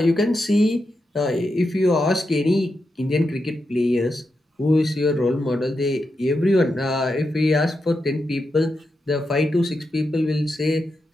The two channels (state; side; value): normal; both; correlation 0.87